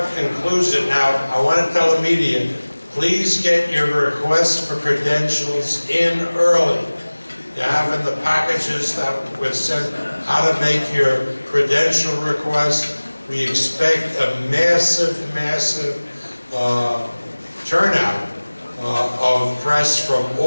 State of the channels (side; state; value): both; inverted; correlation -1.00